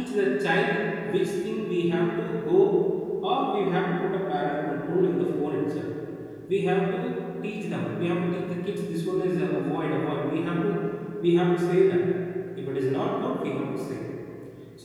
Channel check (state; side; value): identical; both; correlation 1.00